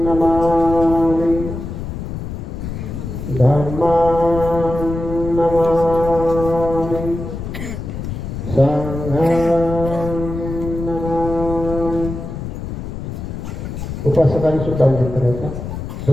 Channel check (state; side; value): noise; left; rumble, 7 dB below the sound